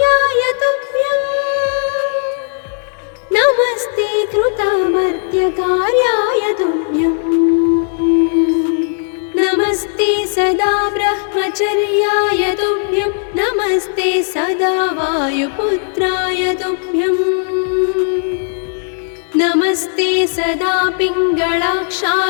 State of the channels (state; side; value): silent; right; digital silence